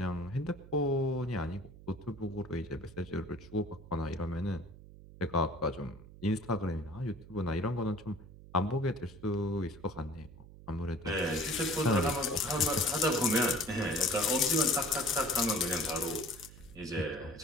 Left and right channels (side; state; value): right; noise; hum, 18 dB below the sound